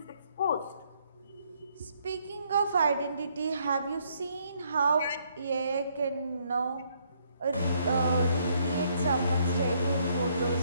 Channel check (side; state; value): both; inverted; correlation -0.70